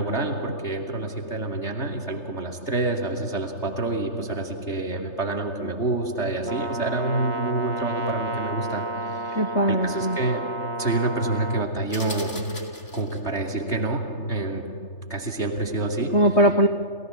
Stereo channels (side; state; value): right; late; 3.3 ms